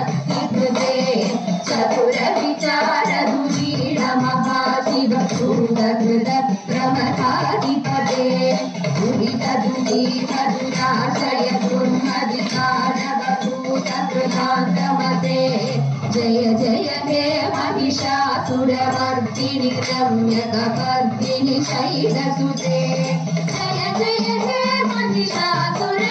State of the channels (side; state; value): both; identical; correlation 1.00